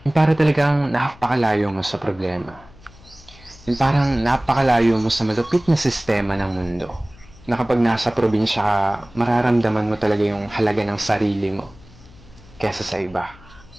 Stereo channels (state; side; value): noise; left; hum, 23 dB below the sound